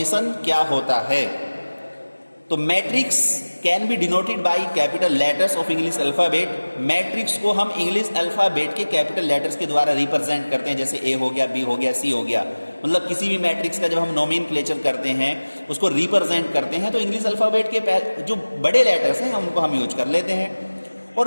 क्या होता है? तो matrix can be denoted by capital letters of English alphabet. Matrix को हम इंग्लिश अल्फाबेट के कैपिटल लेटर्स के द्वारा रिप्रेजेंट करते हैं, जैसे A हो गया, B हो गया, C हो गया। मतलब किसी भी मैट्रिक्स का जब हम नोमेनक्लेचर करते हैं, उसको रिप्रेजेंट करते हैं, तो इंग्लिश अल्फाबेट के जो बड़े लेटर्स हैं उनको हम यूज कर लेते हैं।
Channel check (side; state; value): both; inverted; correlation -1.00